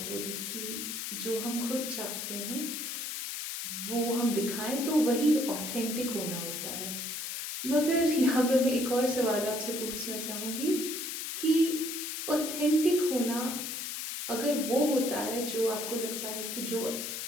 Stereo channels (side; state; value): left; noise; hiss, 5 dB below the sound